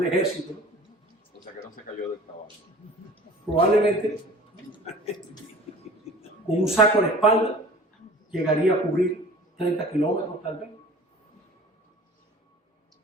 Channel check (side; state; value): both; normal; correlation 0.44